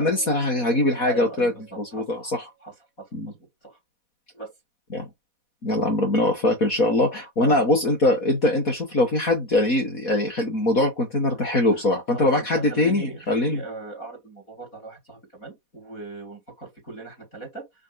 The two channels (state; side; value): late; right; 4.1 ms